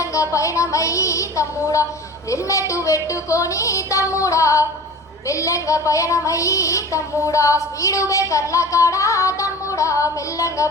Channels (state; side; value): normal; both; correlation 0.38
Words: పయనమయ్యి తమ్ముడా, హెల్మెట్ పెట్టుకొని తమ్ముడా మెల్లంగా పయనమయ్యి తమ్ముడా, స్పీడు బ్రేకర్ల కాడా తమ్ముడా మెల్లంగా